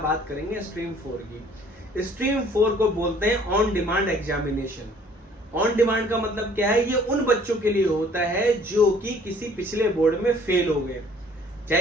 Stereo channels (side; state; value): both; normal; correlation 0.56